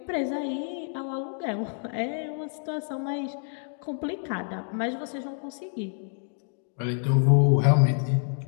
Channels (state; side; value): silent; right; 60 dB below the other